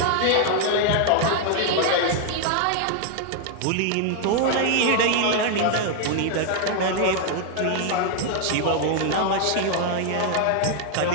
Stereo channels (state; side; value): different; both; correlation 0.00